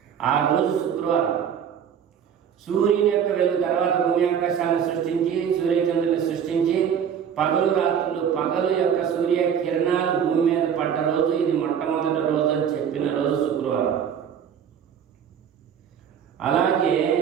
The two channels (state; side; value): quieter; left; 8.1 dB